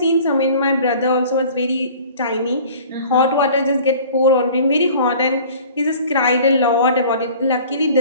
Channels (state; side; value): inverted; both; correlation -0.47